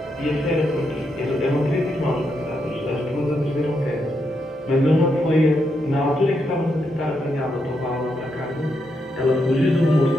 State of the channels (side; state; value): both; normal; correlation 0.81